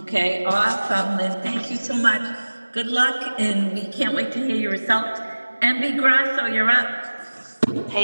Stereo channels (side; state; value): both; inverted; correlation -1.00